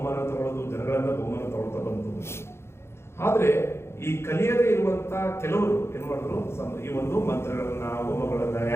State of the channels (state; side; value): late; right; 0.12 ms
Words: ತಗೊಳ್ಳೋದು, ಜನಗಳಿಂದ ಬಹುಮಾನ ತಗೊಳ್ತಾ ಬಂತು. ಆದ್ರೆ ಈ ಕಲಿಯದೇ ಇರುವಂತ ಕೆಲವರು ಏನ್ ಮಾಡಿದ್ರು, ಈ ಒಂದು ಮಂತ್ರಗಳನ್ನ, ಹೋಮಗಳನ್ನ,